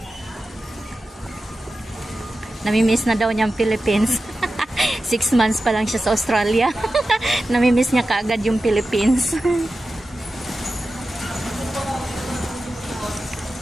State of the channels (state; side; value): normal; both; correlation 0.93